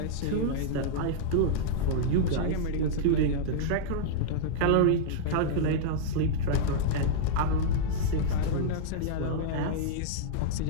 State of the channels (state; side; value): different; both; correlation -0.02